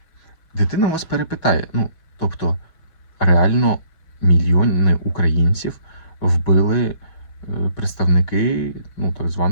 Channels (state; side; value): late; right; 6.2 ms